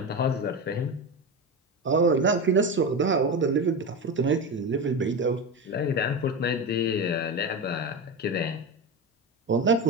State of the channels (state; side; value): normal; both; correlation 0.20